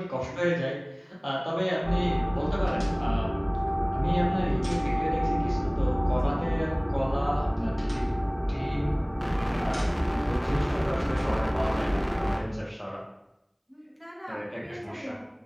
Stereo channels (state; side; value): identical; both; correlation 1.00